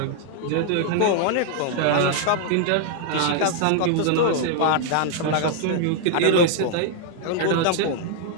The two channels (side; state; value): both; different; correlation 0.00